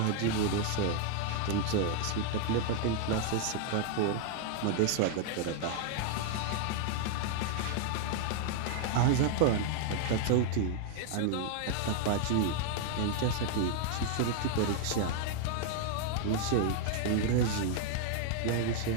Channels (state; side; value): different; both; correlation 0.00